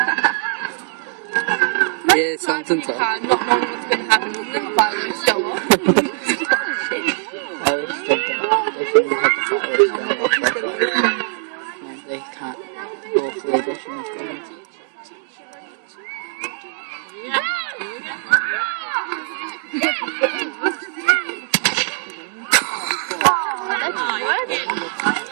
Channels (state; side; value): silent; left; 65 dB below the other